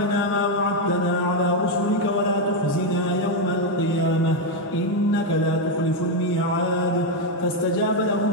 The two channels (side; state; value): both; normal; correlation 0.04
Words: ما وعدتنا على رسلك ولا تخزنا يوم القيامة إنك لا تخلف الميعاد فاستجاب لهم